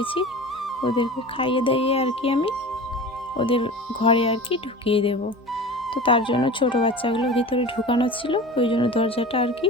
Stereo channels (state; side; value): normal; both; correlation 0.35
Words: ওদেরকে খাইয়ে দাইয়ে আর কি আমি ওদের ঘরে আর কি ঢুকিয়ে দেব। তো তার জন্য ছোটো বাচ্চাগুলো ভিতরে ঢুকানো ছিল, ওই জন্য দরজাটা আর কি